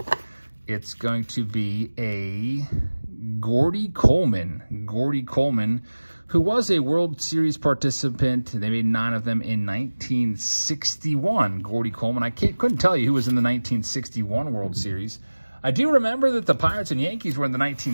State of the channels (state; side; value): inverted; both; correlation -1.00